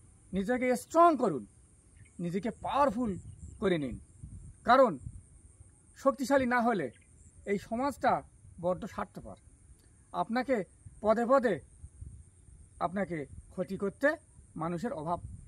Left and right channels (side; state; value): both; identical; correlation 1.00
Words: নিজেকে স্ট্রং করুন, নিজেকে পাওয়ারফুল করে নিন। কারণ শক্তিশালী না হলে এই সমাজটা বড্ড স্বার্থপর। আপনাকে পদে পদে আপনাকে ক্ষতি করতে মানুষের অভাব